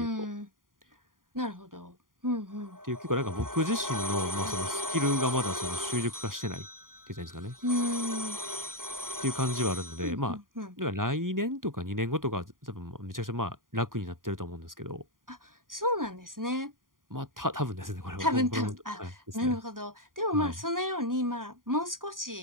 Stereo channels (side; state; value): left; late; 0.90 ms